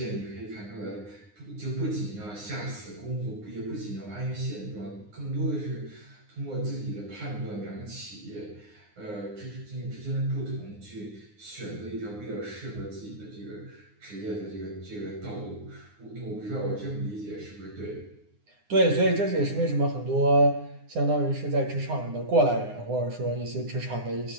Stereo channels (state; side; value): late; left; 9.7 ms